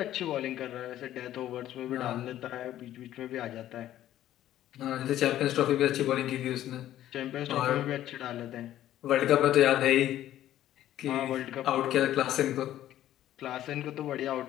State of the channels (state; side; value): quieter; right; 12.8 dB